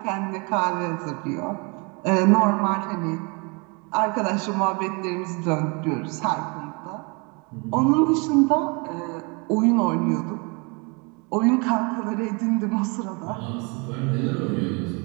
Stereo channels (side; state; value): left; quieter; 30.8 dB